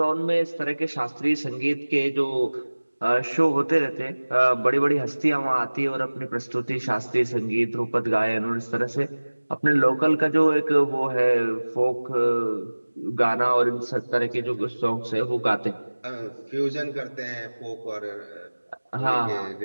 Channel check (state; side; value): inverted; both; correlation -1.00